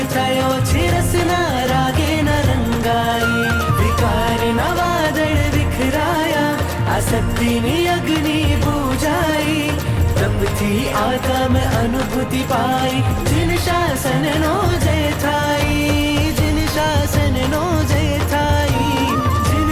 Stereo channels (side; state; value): both; identical; correlation 1.00